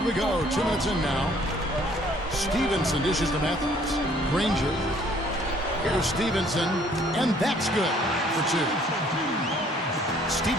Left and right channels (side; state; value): both; normal; correlation 0.60